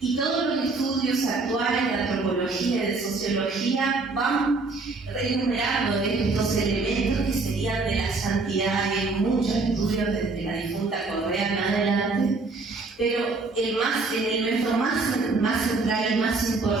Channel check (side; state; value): left; quieter; 3.7 dB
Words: Y todos los estudios actuales de antropología y de sociología van enumerando estos elementos que serían de la santidad. Hay muchos estudios desde la difunta Correa en adelante, pero el elemento más central y más